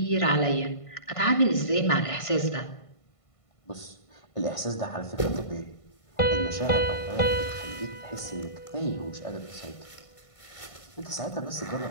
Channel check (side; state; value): right; late; 1.5 ms